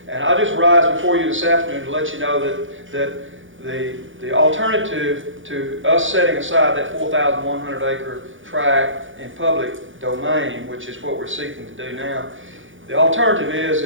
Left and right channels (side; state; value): left; late; 0.57 ms